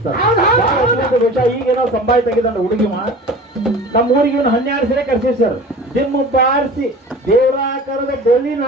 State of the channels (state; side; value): normal; both; correlation 0.39